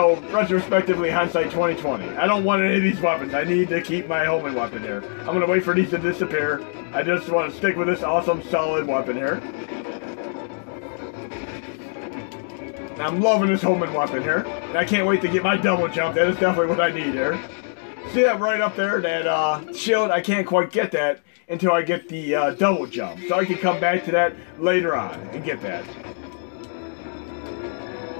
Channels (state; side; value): silent; right; 60 dB below the other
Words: retrospectively, hindsight 2020. I don't want any of these weapons. I need to keep my homing weapon here. I'm going to wait for these to disappear. I just want to stick with this awesome, solid weapon here. I'm loving this homing weapon here. And I can't wait to get my double jump. That is definitely what I need here. See that right up there? That shield, I can't quite get that until I get the double jump. So I can come back to that later on and get that.